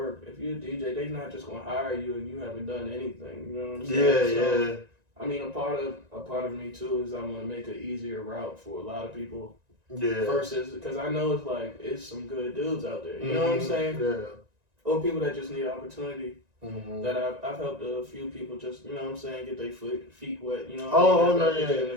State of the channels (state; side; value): late; left; 1.9 ms